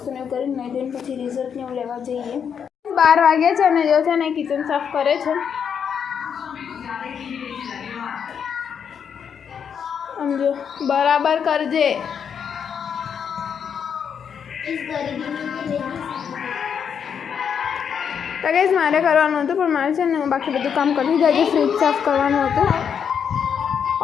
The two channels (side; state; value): right; quieter; 7.5 dB